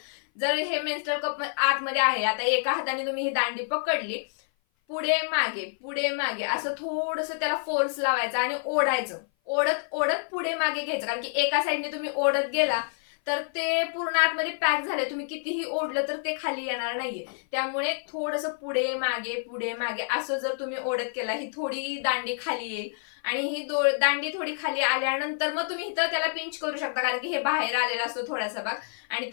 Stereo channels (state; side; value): silent; right; 56 dB below the other